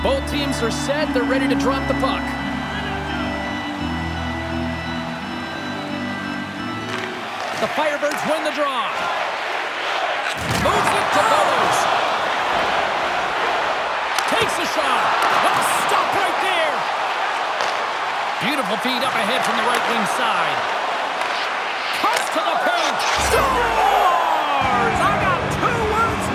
Both teams are set. They're ready to drop the puck. The Firebirds win the draw. Moves it to Bowers. Takes a shot. Oh, stop right there. Beautiful feed up ahead from the right wing side. Cuts to the paint. Scores! I got 2 words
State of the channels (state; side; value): identical; both; correlation 1.00